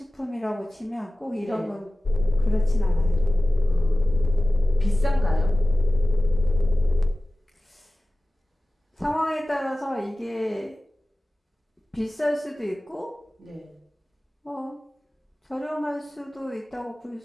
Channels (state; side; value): normal; both; correlation 0.97